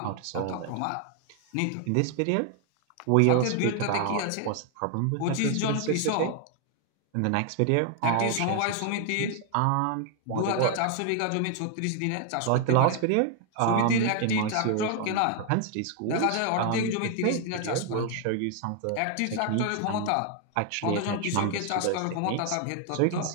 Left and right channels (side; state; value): both; different; correlation 0.00